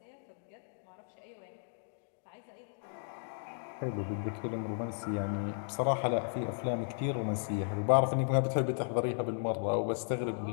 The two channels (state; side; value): silent; right; digital silence